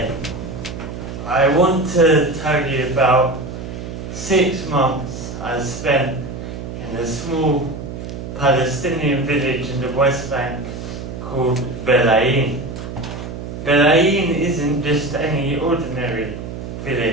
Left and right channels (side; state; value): right; noise; hum, 8 dB below the sound